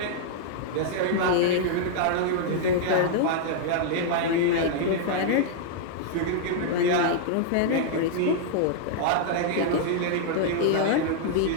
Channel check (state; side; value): different; both; correlation -0.01